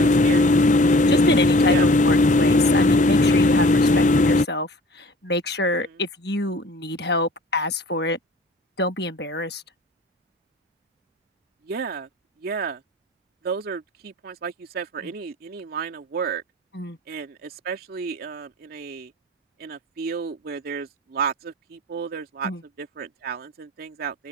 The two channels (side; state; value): both; normal; correlation 0.49